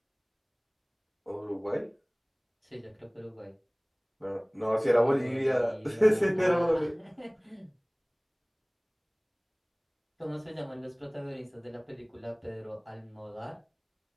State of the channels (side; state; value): both; identical; correlation 1.00